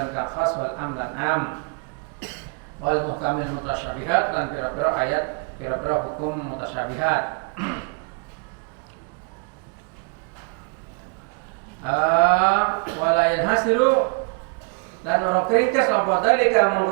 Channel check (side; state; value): left; quieter; 34.3 dB